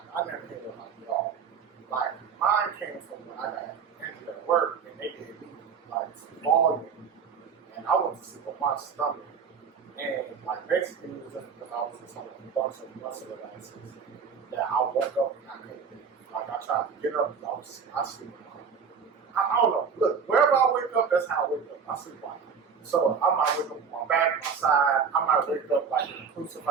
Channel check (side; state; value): left; quieter; 6.2 dB